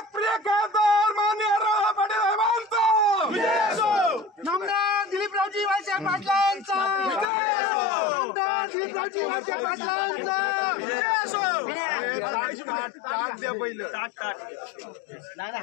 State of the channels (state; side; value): drops out; right; at 7.2 s